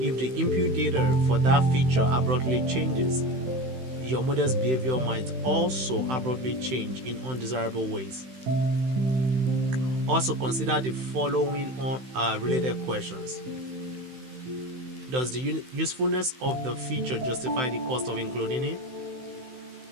the input data for that feature abruptly changes, your model's behavior might also abruptly change in undesirable ways. Also consider the following related questions. Does the usefulness of the feature justify the cost of including it?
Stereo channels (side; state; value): left; late; 16 ms